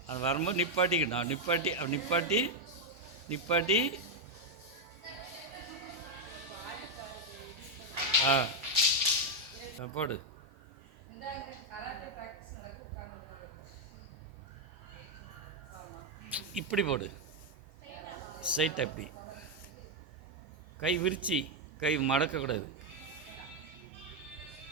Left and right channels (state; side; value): normal; both; correlation 0.02